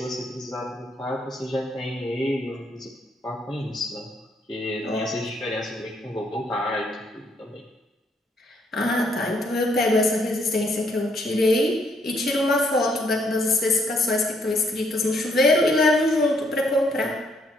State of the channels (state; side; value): normal; both; correlation 0.71